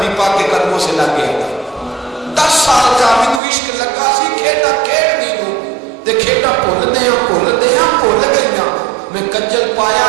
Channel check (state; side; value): drops out; left; at 3.4 s